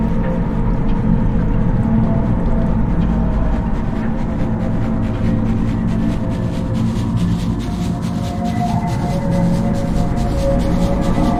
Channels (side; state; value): both; identical; correlation 1.00